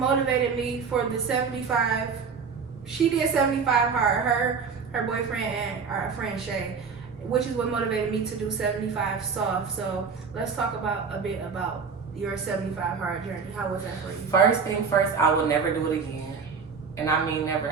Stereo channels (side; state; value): left; quieter; 5.7 dB